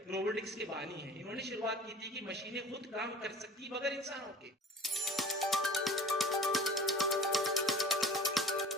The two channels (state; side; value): normal; both; correlation 0.43